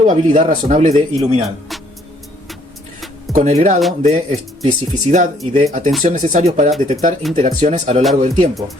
razonable de iluminar, con el grado de especificidad y de atención necesarios para detectar interacciones a lo largo del tiempo,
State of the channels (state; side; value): normal; both; correlation 0.63